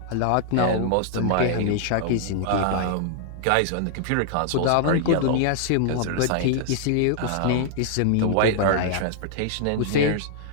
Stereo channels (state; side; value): different; both; correlation -0.01